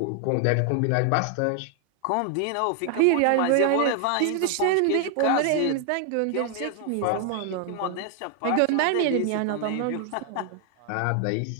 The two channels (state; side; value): different; both; correlation 0.00